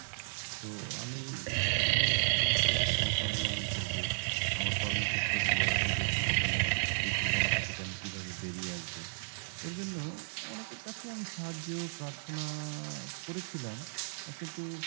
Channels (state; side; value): silent; left; digital silence